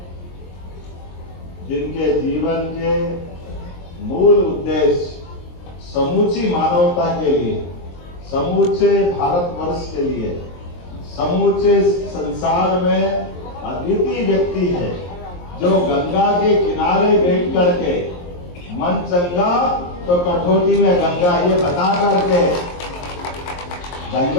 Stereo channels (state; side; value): late; right; 23 ms